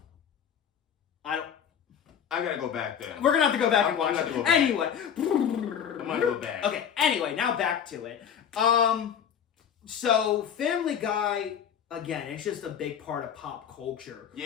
I gotta go back then. We're gonna have to go back and watch it. Anyway. I'm gonna go back. Okay, anyway, now back to it. So, Family Guy, again, it's just a big part of pop culture.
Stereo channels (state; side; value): quieter; right; 8.3 dB